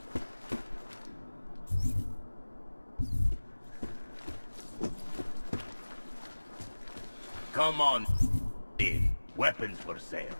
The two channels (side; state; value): both; inverted; correlation -1.00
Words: Come on in. Weapons for sale.